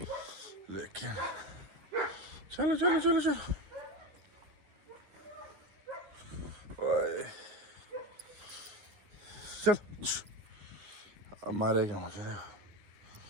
लेकिन चलो ओए, चल मारेगा मुझे,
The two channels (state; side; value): late; left; 9.8 ms